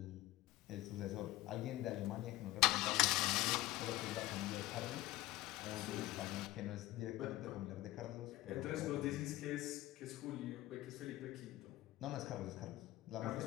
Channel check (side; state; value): right; quieter; 17.2 dB